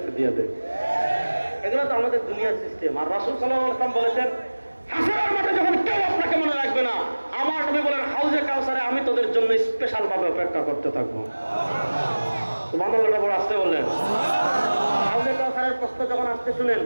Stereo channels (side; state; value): both; inverted; correlation -1.00